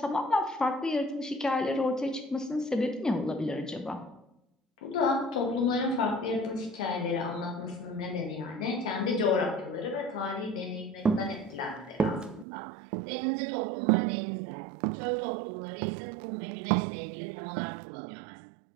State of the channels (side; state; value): left; drops out; at 12.5 s